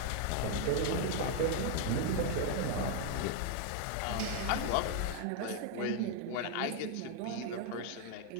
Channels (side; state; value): both; different; correlation 0.00